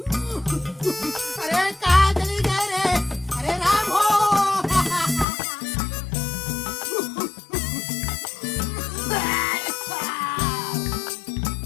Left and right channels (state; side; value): drops out; right; at 5.2 s